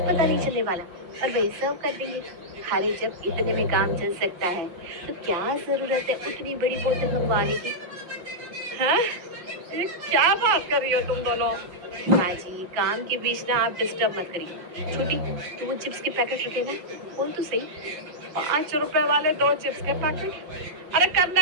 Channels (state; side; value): late; left; 5.7 ms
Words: पता नहीं चलने वाला, और वही सर्व कर देंगे। अरे जब इतने में काम चल सकता है तो क्या जरूरत है उतनी बड़ी बोतल मंगवाने की। हैं? ये क्या बात कर रही हो तुम दोनों? हाँ जी, काम के बीच ना आप डिस्टर्ब मत करिए। छोटी, तो वो चिप्स के पैकेट रखे ना, बोल तो सही। 5 रुपए वाले 2 चिप्स के पैकेट? अरे